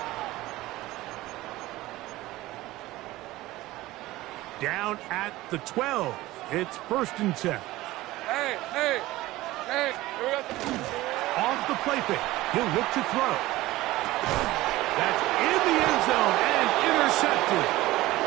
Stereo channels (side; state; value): left; quieter; 17.8 dB